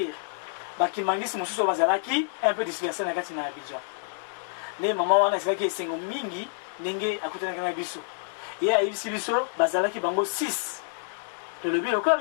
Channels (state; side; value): silent; right; digital silence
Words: bakimbangiste mosusu bazalaki un peu dispersé na kati na Abidjan. Ne mama wana ezalaki esengo mingi ndenge akutanaki na biso. Ye ayebisi biso bazalaki bango 6. Tolobi lokola